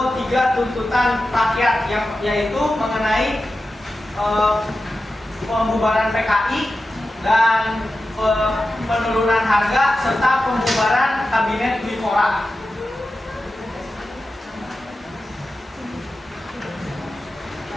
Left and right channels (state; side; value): normal; both; correlation 0.93